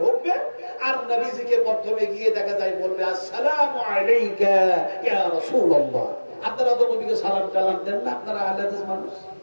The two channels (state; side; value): inverted; both; correlation -1.00